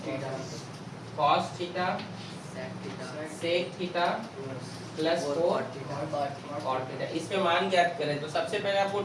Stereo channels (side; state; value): both; identical; correlation 1.00